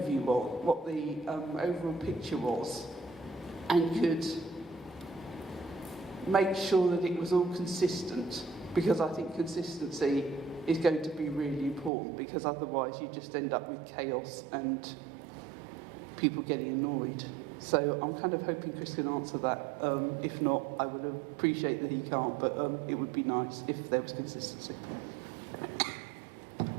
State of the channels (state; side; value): drops out; left; at 11.9 s